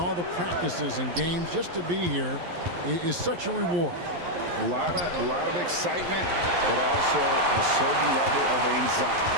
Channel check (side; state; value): left; late; 11 ms